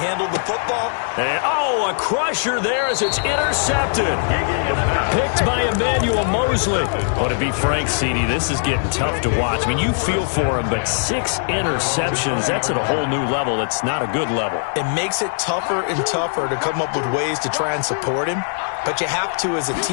the football. And, a crusher there as it's intercepted. Picked by Emmanuel Mosley. Oh, to be frank, CD, this is getting tough to watch. I mean, you feel for him, but 6 interceptions, that's at a whole new level. That's not a good level. It makes it tougher and tougher to come up with ways to try and support him. But you have to as a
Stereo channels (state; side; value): silent; right; digital silence